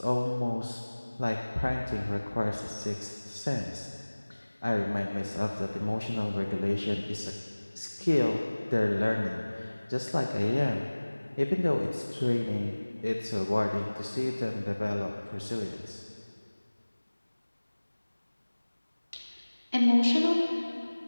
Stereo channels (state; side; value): inverted; both; correlation -1.00